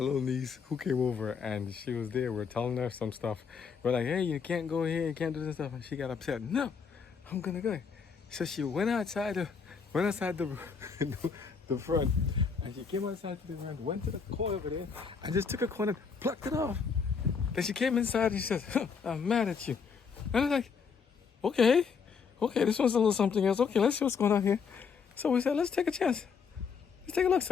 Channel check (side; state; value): right; quieter; 5.9 dB